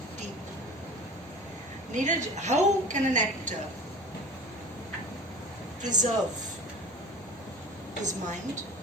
deep. Neeraj, how can an actor preserve his mind,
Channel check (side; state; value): both; normal; correlation 0.39